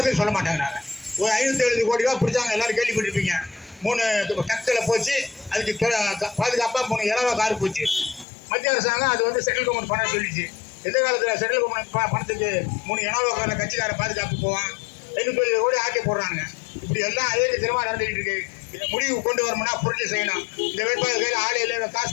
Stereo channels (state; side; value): drops out; right; at 8.2 s